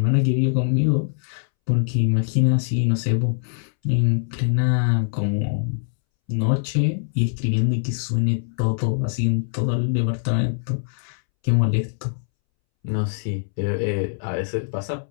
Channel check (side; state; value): right; silent; 64 dB below the other